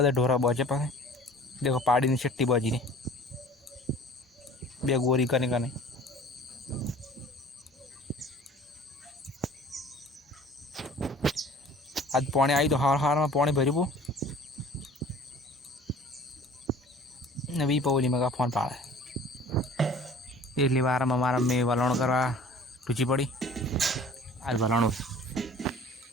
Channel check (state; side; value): normal; both; correlation 0.48